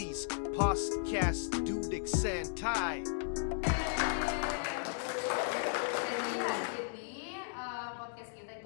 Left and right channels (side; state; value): right; silent; digital silence